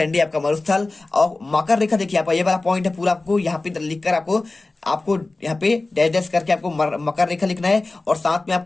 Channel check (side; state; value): right; quieter; 3.2 dB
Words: आपका मरुस्थल। और मकर रेखा देखिए आपका ये वाला पॉइंट है पूरा आपको यहाँ पे लिखकर आपको आपको यहाँ पे डैश डैश करके आपको मकर रेखा लिखना है और साथ में